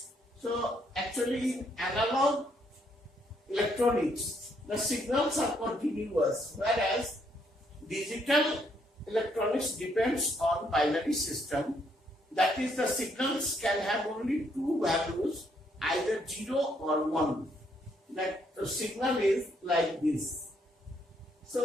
So actually in analog electronics, the signals are continuous, whereas digital electronics depends on binary system. That is, the signals can have only two values, either 0 or 1. That the signal is like this.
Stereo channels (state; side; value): normal; both; correlation 0.72